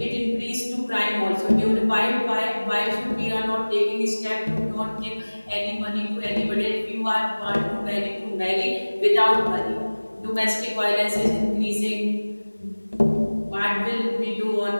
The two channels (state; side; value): inverted; both; correlation -1.00